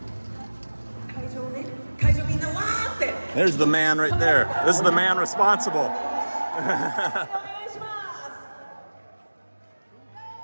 There's the man right there. This is the man responsible.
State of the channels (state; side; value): inverted; both; correlation -1.00